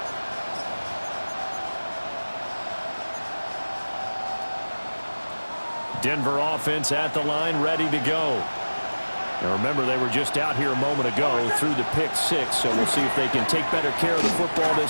Denver offense at the line, ready to go. Now remember, they were just out here a moment ago through the pick six, so we'll see if they can take better care of the football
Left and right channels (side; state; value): both; inverted; correlation -1.00